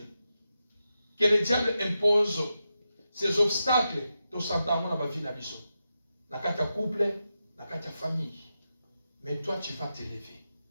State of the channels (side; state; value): both; inverted; correlation -0.88